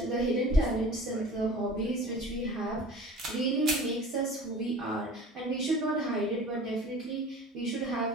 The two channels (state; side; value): normal; both; correlation 0.42